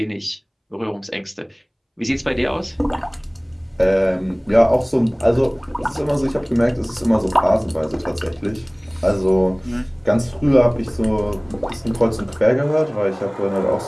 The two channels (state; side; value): identical; both; correlation 1.00